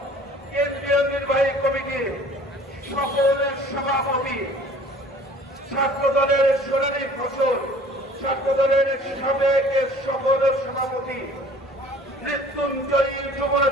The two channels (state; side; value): normal; both; correlation 0.50